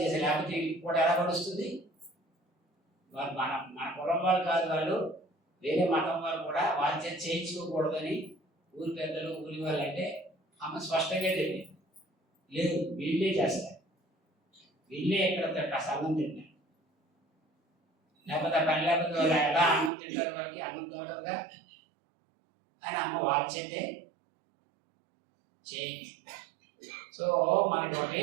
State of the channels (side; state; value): left; drops out; at 19.9 s